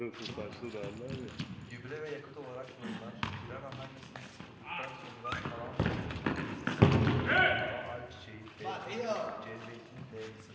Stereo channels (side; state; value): both; identical; correlation 1.00